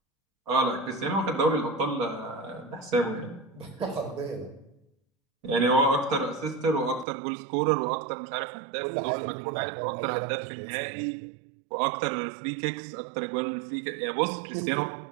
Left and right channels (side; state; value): left; drops out; at 7.1 s